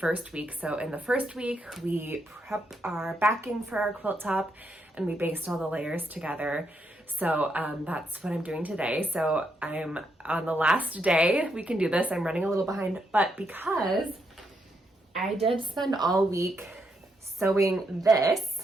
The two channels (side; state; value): both; normal; correlation 0.79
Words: week. So in the first week, we prep our backing for our quilt top and we baste all the layers together. So that's what I'm doing today. So I'm on the last day we can do this. I'm running a little behind, but because I did spend all week sewing